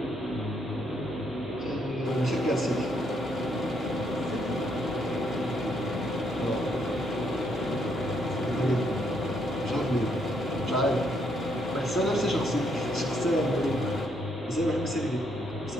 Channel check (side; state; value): both; normal; correlation 0.73